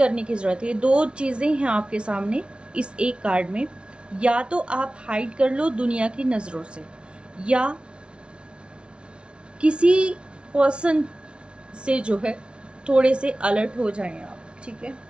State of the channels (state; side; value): late; left; 0.058 ms